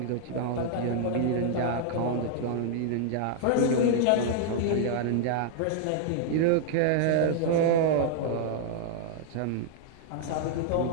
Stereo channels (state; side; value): different; both; correlation -0.01